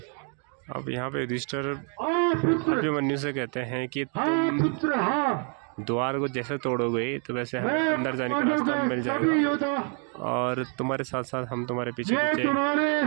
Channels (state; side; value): quieter; left; 39.8 dB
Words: अब यहाँ पे युधिष्ठिर पुत्र, अभिमन्यु से कहते हैं कि हाँ तुम पुत्र, हाँ, द्वार को जैसे तोड़ोगे तो वैसे हमें मैं अंदर जाने का रास्ता मिल सभी जाएगा योद्धा और तुम्हारे साथ साथ हम तुम्हारे पीछे ये पीछे तुम्हारे